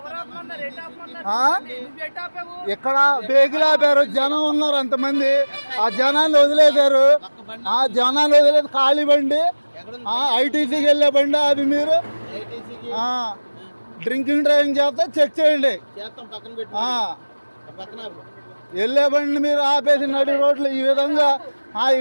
ఇక్కడ బేగులు ఆపారు. జనం ఉన్నారు అంతమంది, ఆ జనాన్ని వదిలేశారు. ఆ జనాన్ని వదిలేదు ఖాళీ బండి, ఐటీసీకి వెళ్ళే బండి ఆపి మీరు డ్రింకింగ్ డ్రైవింగ్ చేస్తే చెక్ చేయండి. వెళ్ళే బండి మీరు ఆపేసి నడి రోడ్లు ఈ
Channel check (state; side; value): inverted; both; correlation -1.00